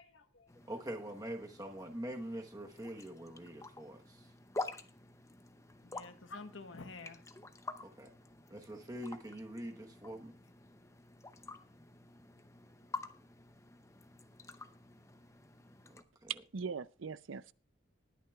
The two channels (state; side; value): normal; both; correlation 0.51